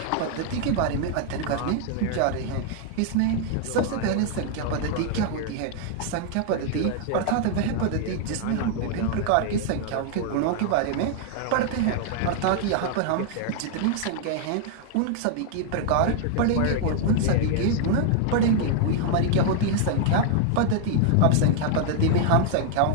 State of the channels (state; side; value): different; both; correlation 0.00